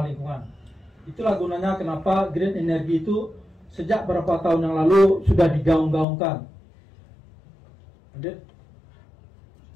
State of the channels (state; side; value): drops out; right; at 6.1 s